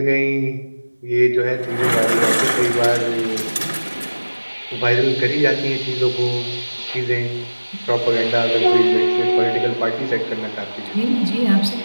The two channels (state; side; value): inverted; both; correlation -1.00